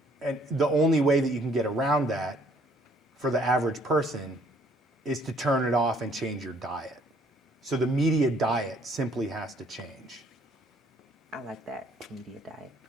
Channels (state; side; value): normal; both; correlation 0.62